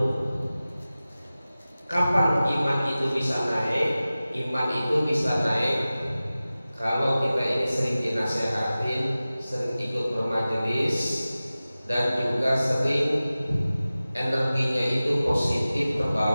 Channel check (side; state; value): both; inverted; correlation -0.96